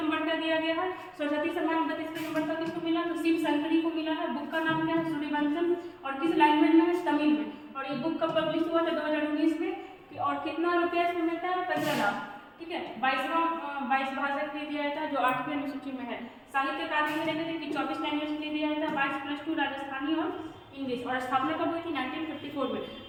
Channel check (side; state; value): both; identical; correlation 1.00